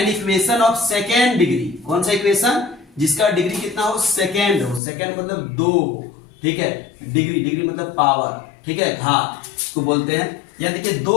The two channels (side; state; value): right; drops out; at 4.8 s